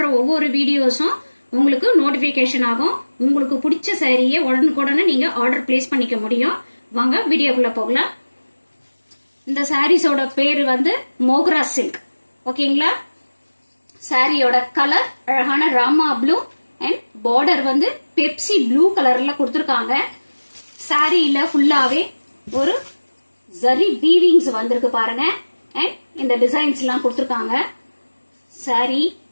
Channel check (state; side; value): inverted; both; correlation -1.00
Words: ஒவ்வொரு வீடியோஸும் உங்களுக்கு நோட்டிபிகேஷன் ஆகும். உங்களுக்கு பிடிச்ச சாரியை உடனுக்குடனே நீங்க ஆர்டர் பிளேஸ் பண்ணிக்க முடியும். வாங்க வீடியோக்குள்ள போகலாம். இந்த சாரீஸோட பேர் வந்து மோக்ரா சில்க். ஓகேங்களா? சாரியோட கலர் அழகான ராமா ப்ளூ அண்ட் பார்டர் வந்து பெப்சி ப்ளூ கலர்ல கொடுத்துருக்காங்க. சாரியில ஃபுல்லாவே ஒரு ஜரி வீவிங்ஸ் வந்திருக்கு பாருங்க. அண்ட் இந்த டிசைன்ஸ் எல்லாம் கொடுத்துருக்காங்க. சாரி